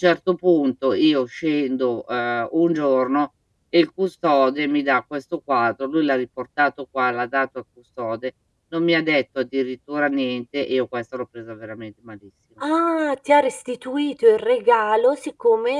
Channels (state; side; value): identical; both; correlation 1.00